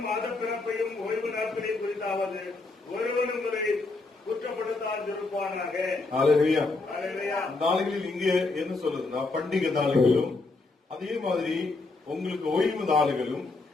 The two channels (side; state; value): right; quieter; 3.5 dB